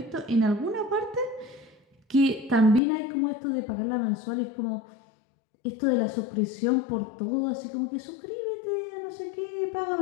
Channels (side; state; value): right; drops out; at 2.8 s